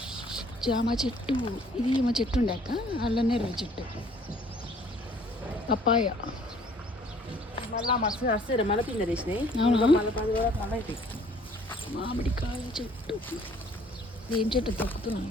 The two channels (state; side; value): normal; both; correlation 0.58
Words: జామ చెట్టు. ఇది ఏమో చెట్టు ఉండే అక్క. అల్లనేరు చెట్టు. పప్పాయ. మళ్ళీ మస్తు వస్తాయి. మళ్ళీ పిండి వేసినాయి. మామిడికాయ చెట్టు. ఏం చెట్టు